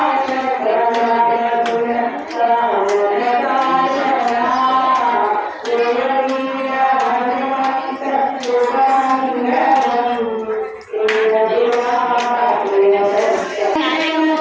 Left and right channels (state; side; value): identical; both; correlation 1.00